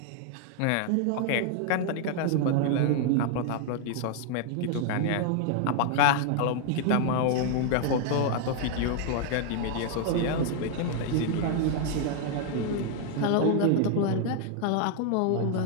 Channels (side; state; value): both; different; correlation 0.00